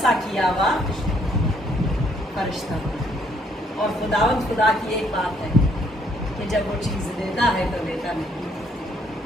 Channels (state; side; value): normal; both; correlation 0.68